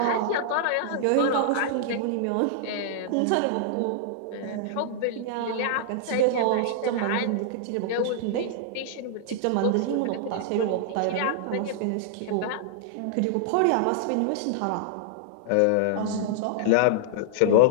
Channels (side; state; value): both; different; correlation -0.01